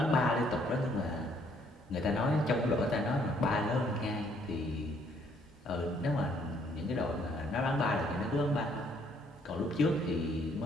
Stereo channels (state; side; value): normal; both; correlation 0.66